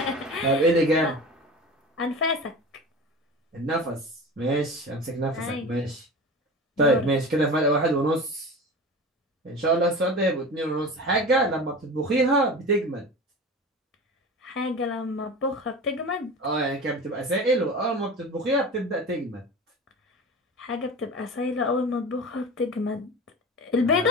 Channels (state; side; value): normal; both; correlation 0.32